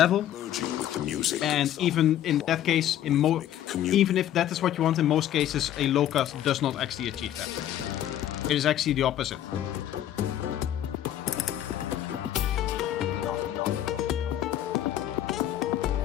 And even in that case, even if that is what you want, in most cases, a low cut does not actually achieve that. It is actually the opposite.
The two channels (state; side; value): quieter; right; 11.7 dB